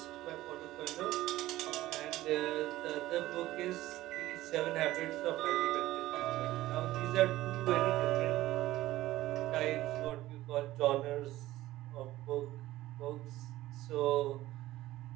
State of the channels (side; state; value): left; quieter; 16.1 dB